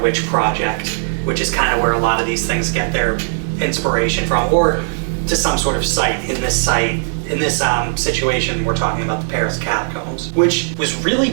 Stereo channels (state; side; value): silent; left; 60 dB below the other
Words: Project, which is kind of where a lot of these things get their inspiration from, or to some sort of site. In this situation, we're talking about the Paris catacombs, which was really